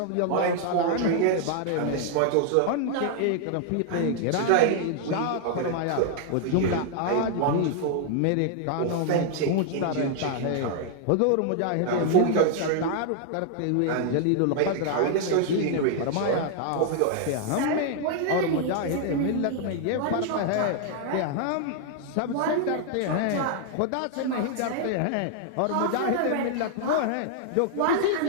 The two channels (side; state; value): both; different; correlation 0.00